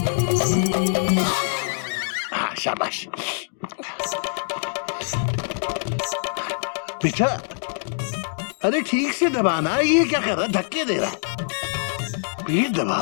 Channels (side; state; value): right; silent; digital silence